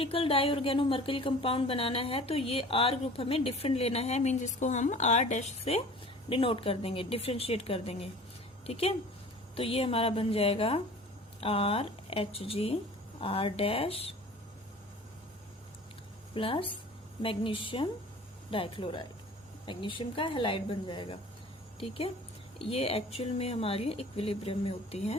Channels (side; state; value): both; normal; correlation 0.44